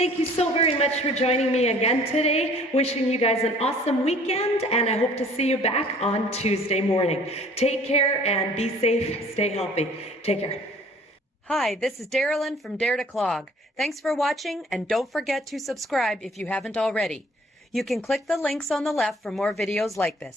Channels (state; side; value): normal; both; correlation 0.53